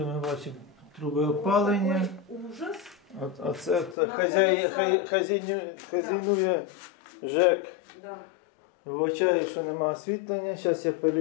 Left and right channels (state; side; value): drops out; right; at 4.0 s